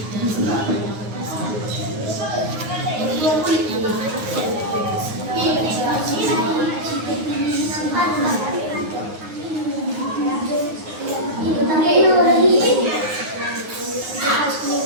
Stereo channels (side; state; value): left; late; 9.5 ms